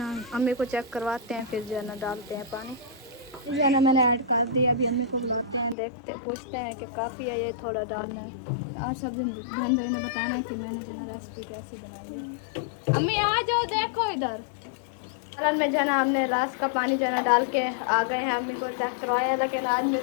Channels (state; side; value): drops out; right; at 5.8 s